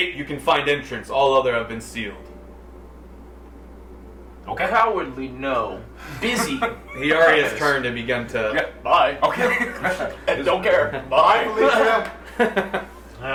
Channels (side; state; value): both; identical; correlation 1.00